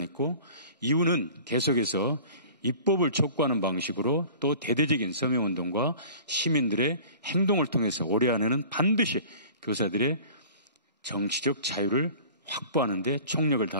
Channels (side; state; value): both; inverted; correlation -0.44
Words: 이유는 계속해서 입법을 촉구하는 방식으로 또 대대적인 서명운동과 시민들의 행동을 통해서 올해 안에는 반드시 교사들의 정치적 자유를 확보하는 데 총력을